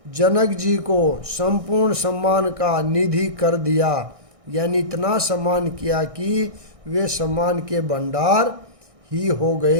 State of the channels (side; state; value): left; late; 1.6 ms